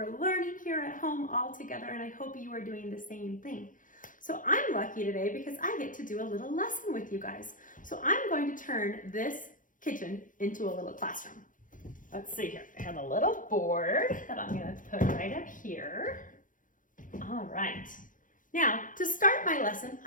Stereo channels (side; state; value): right; late; 0.38 ms